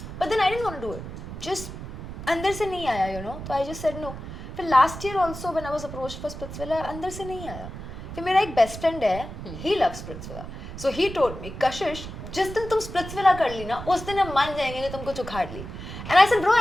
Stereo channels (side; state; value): right; noise; rumble, 10 dB below the sound